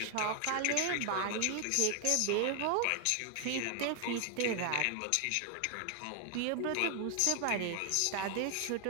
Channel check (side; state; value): both; different; correlation 0.00